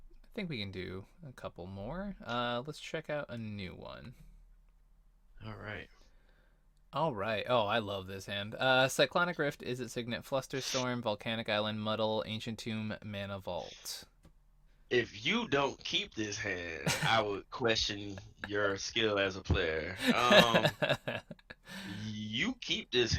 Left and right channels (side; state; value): both; identical; correlation 1.00